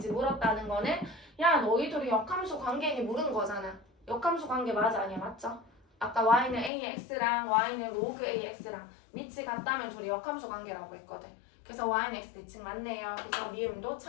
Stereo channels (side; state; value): right; drops out; at 6.7 s